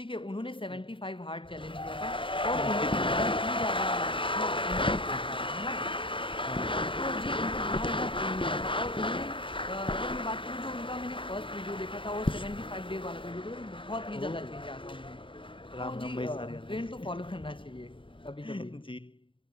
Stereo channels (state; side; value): late; right; 0.25 ms